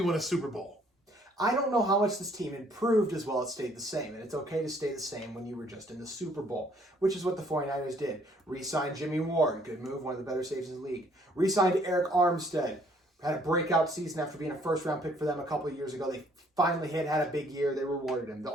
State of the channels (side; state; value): both; normal; correlation 0.63